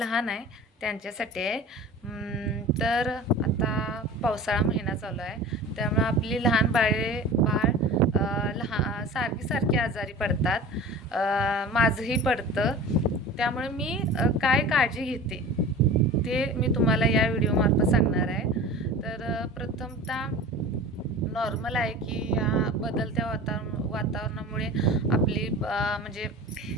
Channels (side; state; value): both; normal; correlation 0.37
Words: आहे त्यांच्यासाठी आहे. तर आता पावसाळा महिना चालू आहे, त्यामुळे आपली लहान बाळ सारखी आजारी पडतात. माझंही पडतं. त्यामुळे मी काय काळजी घेते ते मी तुम्हाला या व्हिडिओमार्फत सांगणार आहे. तर प्रथमतः नॉर्मल आहे की या बदलत्या वातावरणामुळे आपली म्हणजे